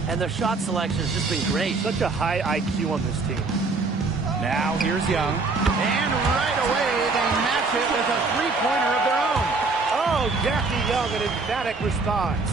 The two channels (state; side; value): quieter; left; 3.9 dB